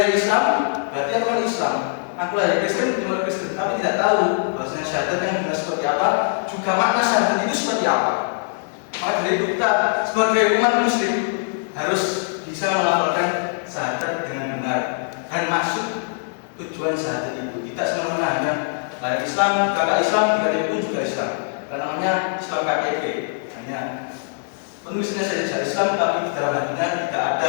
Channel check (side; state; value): right; silent; 56 dB below the other